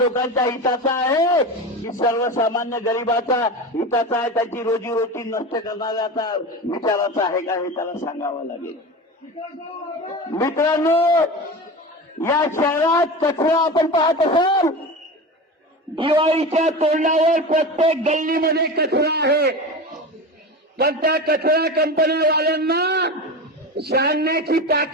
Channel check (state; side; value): normal; both; correlation 0.27